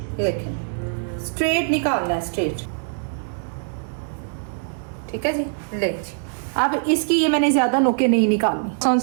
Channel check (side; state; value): left; silent; digital silence